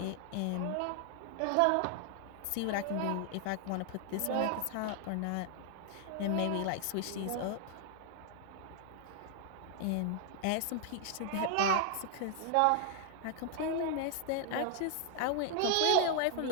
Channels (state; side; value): different; both; correlation 0.00